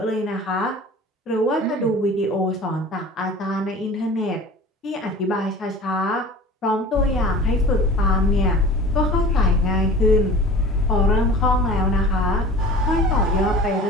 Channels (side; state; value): both; normal; correlation 0.40